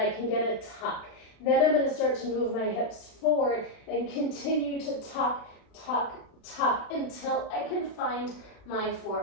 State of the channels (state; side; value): late; right; 36 ms